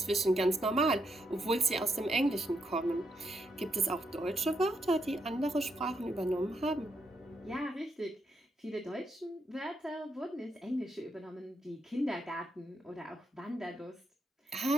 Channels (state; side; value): normal; both; correlation 0.79